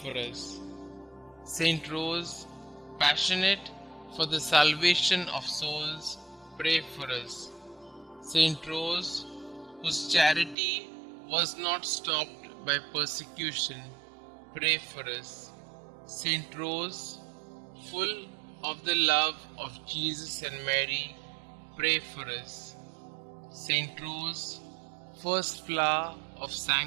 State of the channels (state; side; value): drops out; left; at 10.6 s